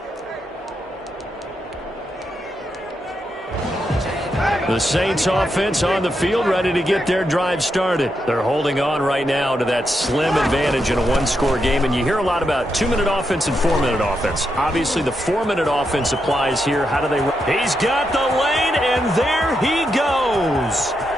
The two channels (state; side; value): normal; both; correlation 0.83